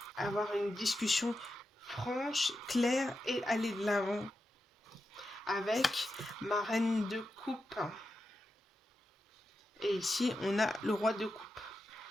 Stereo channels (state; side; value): normal; both; correlation 0.89